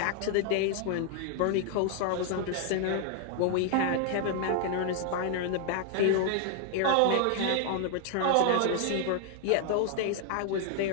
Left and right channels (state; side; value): different; both; correlation 0.00